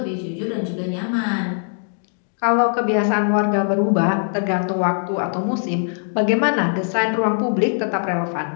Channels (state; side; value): silent; right; 59 dB below the other